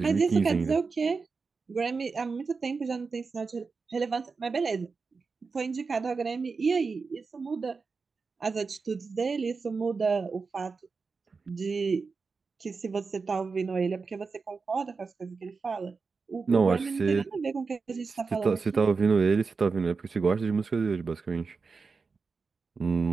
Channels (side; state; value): left; quieter; 4.7 dB